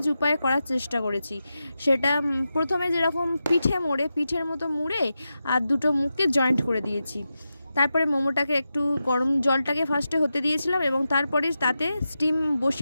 উপায়ে করার চেষ্টা করেছি, সেটা প্রথমে যেরকম পিঠের মতো মুড়ে আর দুটো মুখকে জয়েন্ট করে দিয়েছি। তারপরে মোমোটাকে একটু গরম জলটাকে ফার্স্টে হতে দিয়েছিলাম এবং তারপরে তাতে স্টিম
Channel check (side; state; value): both; inverted; correlation -0.90